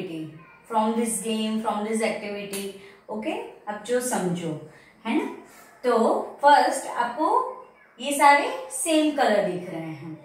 from this game, from this activity. Okay. अब जो समझो है ना. तो first आपको ये सारे सेम कलर दिख रहे हैं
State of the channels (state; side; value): identical; both; correlation 1.00